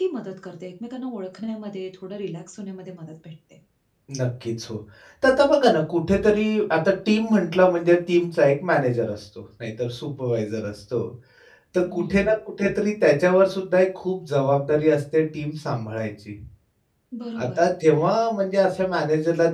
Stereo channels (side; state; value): both; identical; correlation 1.00